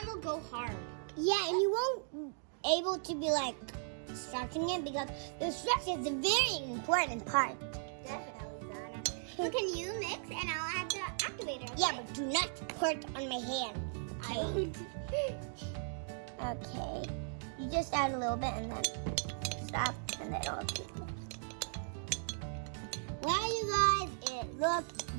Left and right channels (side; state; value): left; silent; digital silence